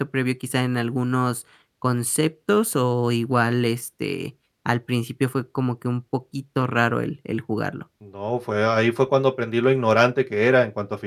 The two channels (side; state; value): both; identical; correlation 1.00